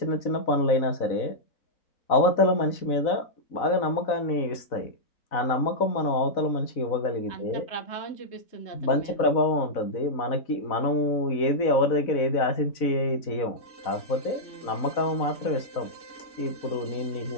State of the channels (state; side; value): late; right; 4.0 ms